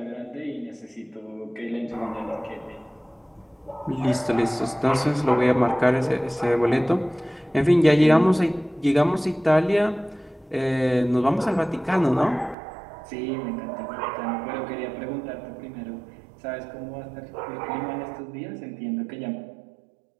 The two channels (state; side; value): drops out; left; at 12.6 s